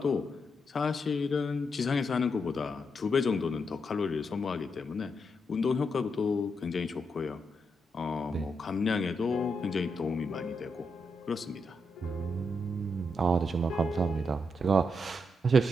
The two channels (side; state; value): both; normal; correlation 0.82